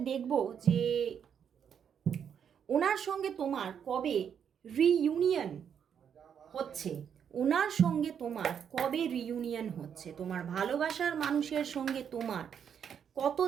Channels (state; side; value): quieter; left; 8.0 dB